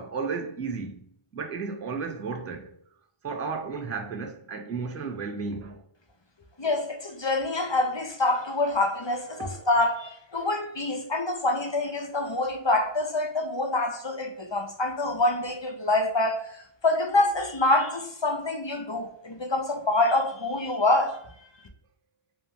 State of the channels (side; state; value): right; late; 1.2 ms